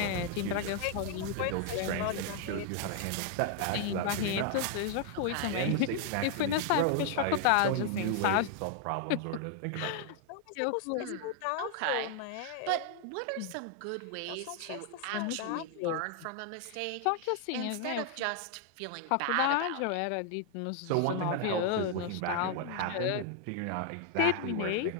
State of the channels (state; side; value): different; both; correlation 0.00